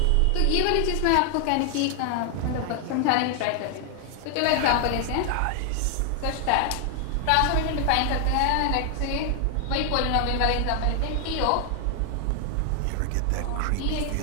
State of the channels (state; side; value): different; both; correlation 0.00